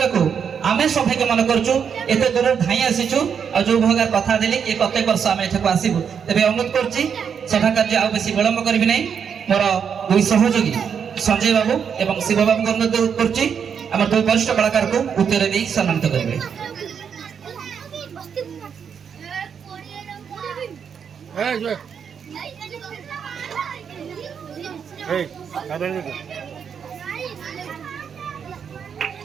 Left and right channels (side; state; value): left; quieter; 7.2 dB